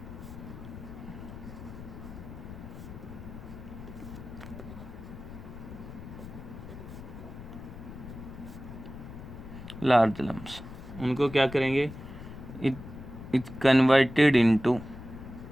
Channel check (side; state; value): left; noise; rumble, 12 dB below the sound